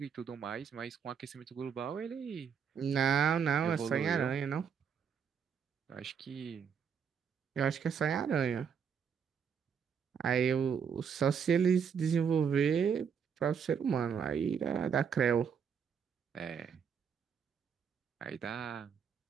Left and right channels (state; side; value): quieter; left; 7.0 dB